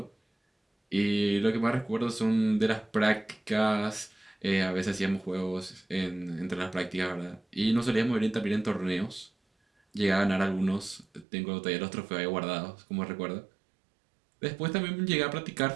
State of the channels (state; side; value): drops out; left; at 11.2 s